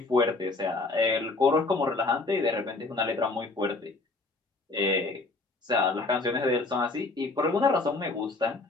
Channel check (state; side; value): quieter; right; 3.4 dB